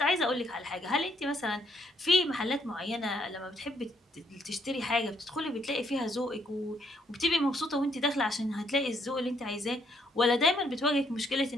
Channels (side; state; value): both; normal; correlation 0.71